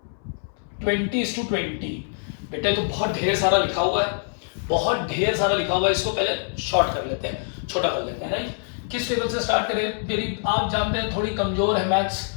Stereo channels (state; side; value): silent; right; 62 dB below the other